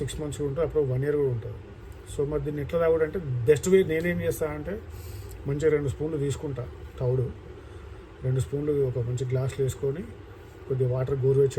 6 months ఉంటుంది, అప్పుడు 1 year కూడా ఉంటుంది. సో మరి దీన్ని ఎట్లా తాగుడంటే బెస్ట్ వే నేనేం చేస్తానంటే, మంచిగా 2 స్పూన్లు తీసుకుంటా తౌడు, 2 స్పూన్లు ఒక మంచి గ్లాసులు వేసుకొని, కొద్దిగా వాటర్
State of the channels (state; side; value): identical; both; correlation 1.00